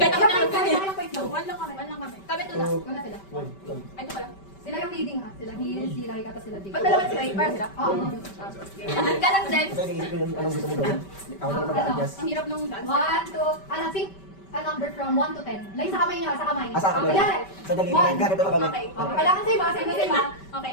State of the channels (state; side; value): late; right; 5.2 ms